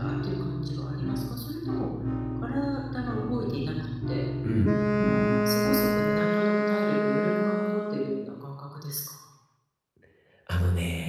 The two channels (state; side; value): identical; both; correlation 1.00